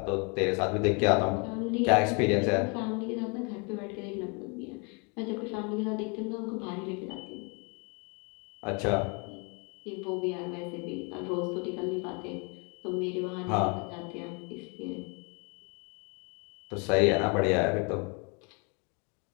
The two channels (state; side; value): quieter; right; 33.5 dB